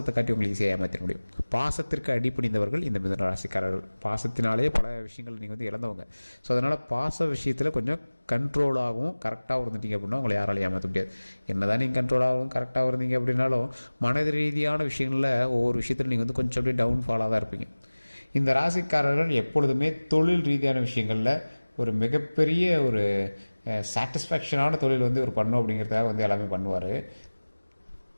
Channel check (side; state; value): both; inverted; correlation -1.00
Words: காட்டி உங்களை ஈஸியாக ஏமாற்ற முடியும். பாசத்திற்கு அடிப்பணிந்தவர்கள் இந்த மிதுன ராசிக்காரர்கள். பாசத்தினாலே பல விஷயங்கள் நீங்கள் இழந்தவங்க. ஸோ அதனால் பாச விஷயத்தில் கொஞ்சம் கண்ட்ரோலாகவும் கரெக்டாக இருந்துட்டீங்க அப்படின்னா உங்களை யாராலையும் ஏமாற்ற முடியாது. என்ன தான் நீங்கள் கண்ட்ரோலாகவும் கரெக்டாக இருந்தீங்க அப்படின்னாலும் மனது ரீதியான விஷயங்களில் ஒவ்வொரு விஷயத்தில் நீங்கள் கொஞ்சம் அப்படியே டவுன்ஃபாலாக தான் இருப்பீங்க. இந்த ராசிக்காரர்கள் எப்பொழுதுமே தொழில் ரீதியான விஷயங்களில் ஒரு மிகப்பெரிய ஒரு சாட்டிஸ்ஃபேக்ஷனான தொழில் ஒரு பண்ணும் அப்படிங்கிறதுக்காக எல்லாமே பண்ணுவார்.